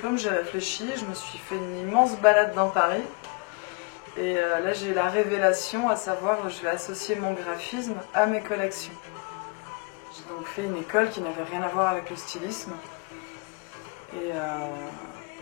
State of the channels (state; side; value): quieter; right; 29.2 dB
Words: j'ai réfléchi, je me suis fait une immense balade dans Paris. Et là, j'ai eu la révélation, à savoir, je vais associer mon graphisme à mes collections. J'ai donc fait une école qui n'avait rien à voir avec le stylisme. Et